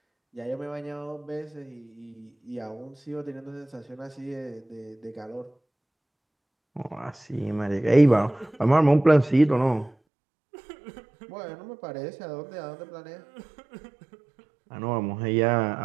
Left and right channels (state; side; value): drops out; left; at 10.0 s